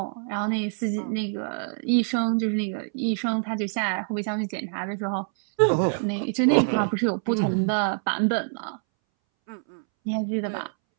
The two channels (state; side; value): silent; left; 61 dB below the other